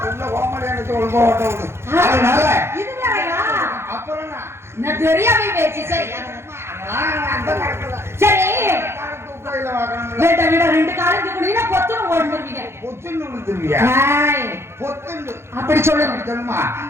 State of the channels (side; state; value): left; late; 0.12 ms